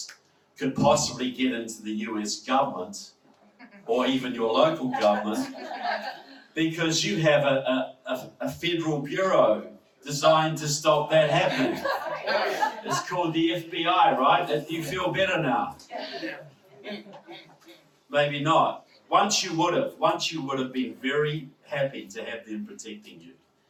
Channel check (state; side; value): identical; both; correlation 1.00